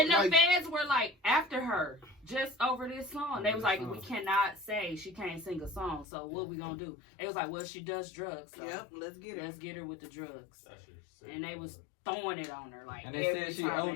the Like, fans were like after her just over this song. They was like, we cannot say she can't sing a song. So what we gonna do? They was like, well, she does drugs. So yep, let's get it. let's get her with the drugs. And they was throwing it on her like And they every said she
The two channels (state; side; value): drops out; right; at 6.1 s